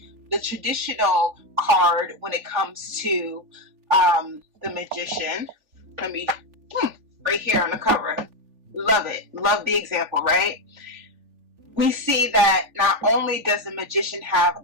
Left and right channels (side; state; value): left; late; 3.4 ms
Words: the traditional card when it comes to the Magician, let me, right here on the cover, love it, love the example, right? We see that not only does the Magician